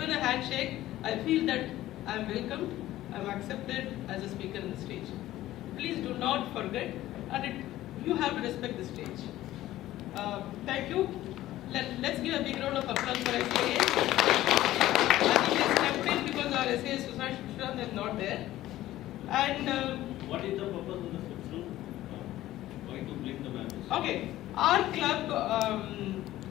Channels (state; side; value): quieter; right; 15.0 dB